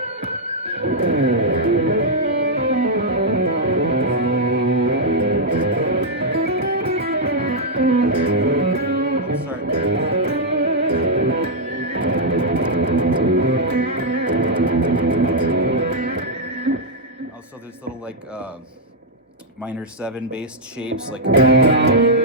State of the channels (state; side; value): normal; both; correlation -0.04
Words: also there's little like minor 7 based shapes, like